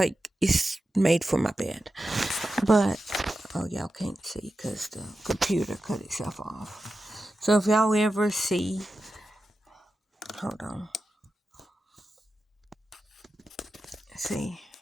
it's made for my bed. But, oh, y'all can't see because the computer cut itself off. So, if y'all ever see, hold on. See,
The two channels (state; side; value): normal; both; correlation 0.92